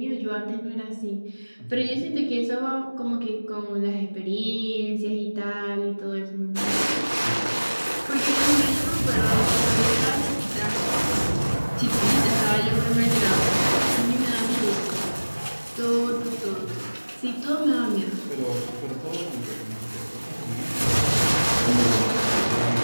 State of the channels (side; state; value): both; inverted; correlation -1.00